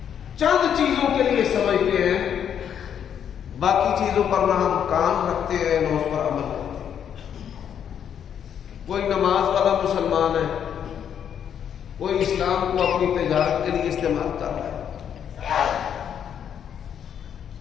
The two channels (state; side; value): quieter; right; 8.7 dB